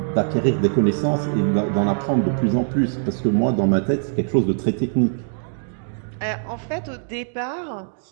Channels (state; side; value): silent; left; digital silence